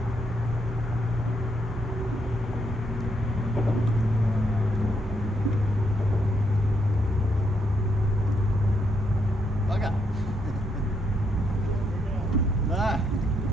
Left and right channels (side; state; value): both; normal; correlation 0.77